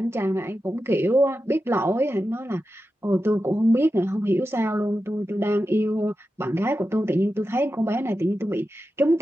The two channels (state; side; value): normal; both; correlation 0.91